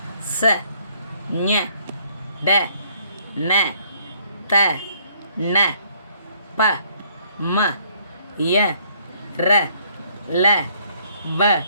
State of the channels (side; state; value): both; inverted; correlation -0.65